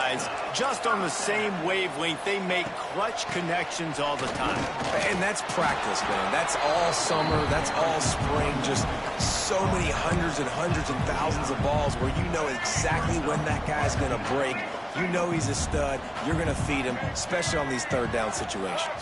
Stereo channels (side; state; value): both; identical; correlation 1.00